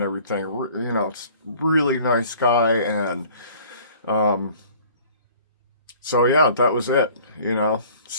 everything. You know, it's really nice guy, and um, so yeah, that was it. You know,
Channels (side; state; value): both; inverted; correlation -0.51